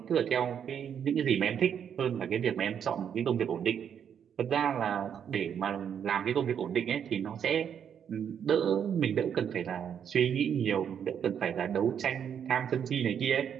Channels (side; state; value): left; quieter; 8.3 dB